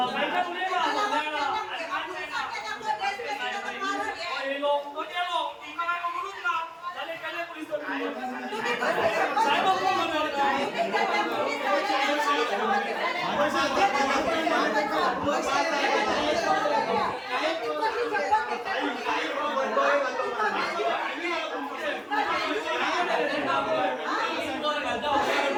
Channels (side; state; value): both; identical; correlation 1.00